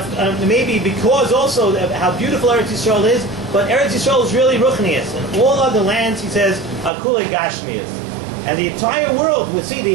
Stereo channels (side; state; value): left; drops out; at 6.9 s